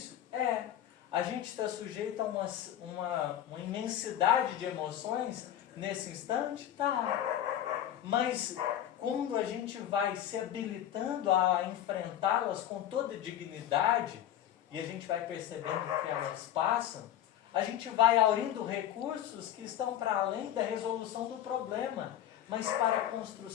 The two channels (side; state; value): right; quieter; 11.4 dB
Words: É. A gente está sujeito a uma imensidade de emoções nesse instante? Tá. Mas quando a gente vai se habilitando a enfrentá-las com toda dignidade, e a gente vai percebendo que elas passam, a gente vai aurindo recursos que estão para além da resolução do problema, mas para a